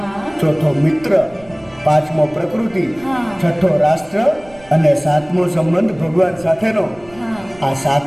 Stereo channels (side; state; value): right; noise; rumble, 24 dB below the sound